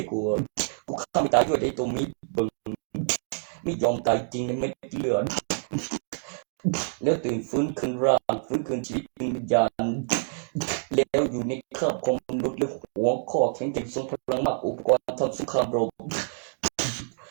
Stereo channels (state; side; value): silent; left; digital silence